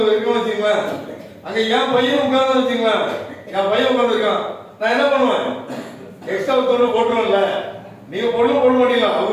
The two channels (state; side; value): identical; both; correlation 1.00